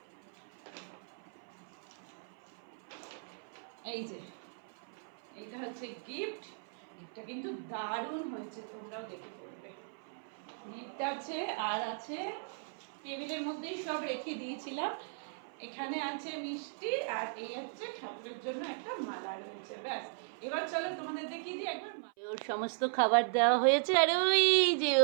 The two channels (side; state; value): left; silent; 53 dB below the other